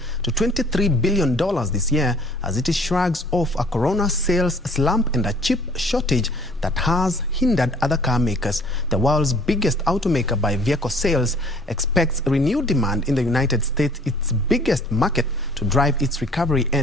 to $23 billion this year as it shrugs off a corona sales slump and a chip shortage that has hindered other car makers. The world's biggest automaker by vehicle sales expects renewed demand in the United States, its biggest market, to drive its recovery,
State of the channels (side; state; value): both; normal; correlation 0.55